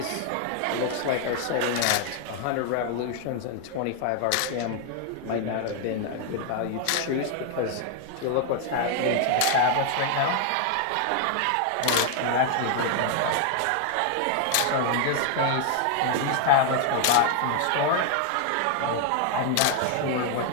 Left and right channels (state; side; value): different; both; correlation 0.00